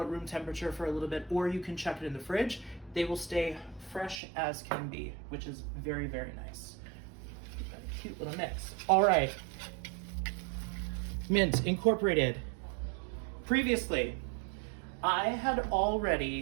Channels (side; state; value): left; drops out; at 4.2 s